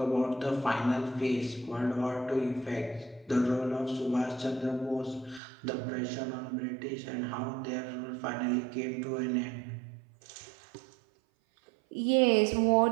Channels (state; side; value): drops out; left; at 5.4 s